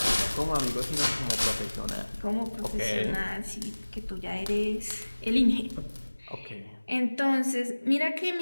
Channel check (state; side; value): inverted; both; correlation -1.00